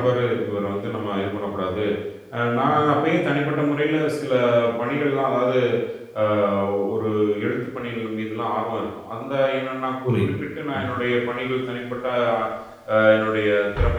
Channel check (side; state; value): both; identical; correlation 1.00